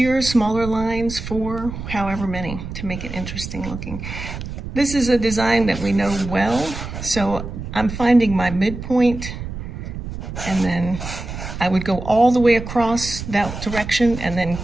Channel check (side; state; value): right; noise; rumble, 8 dB below the sound